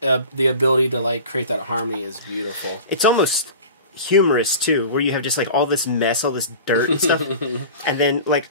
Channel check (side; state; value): both; inverted; correlation -0.38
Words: the ability to like create that harmony is beautiful. It's almost humorous too, where you have just like all this mess, all this dirt and stuff, and then